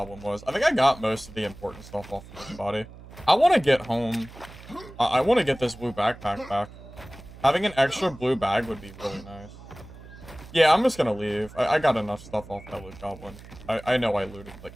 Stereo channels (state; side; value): noise; right; hum, 18 dB below the sound